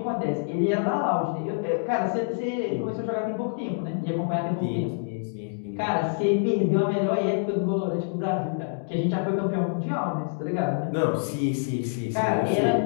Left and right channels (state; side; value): silent; right; digital silence